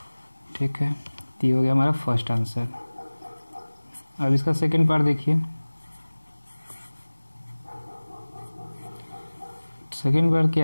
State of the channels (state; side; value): inverted; both; correlation -1.00